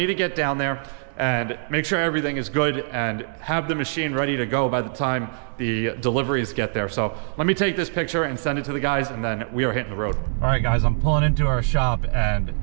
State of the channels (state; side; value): silent; left; 63 dB below the other